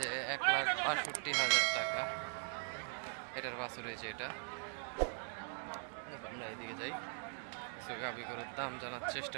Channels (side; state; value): left; silent; 51 dB below the other